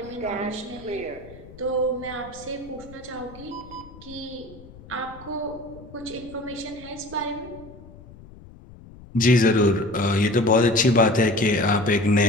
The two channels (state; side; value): noise; left; rumble, 20 dB below the sound